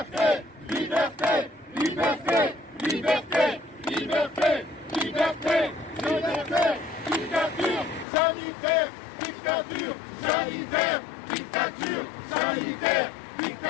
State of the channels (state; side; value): drops out; right; at 8.1 s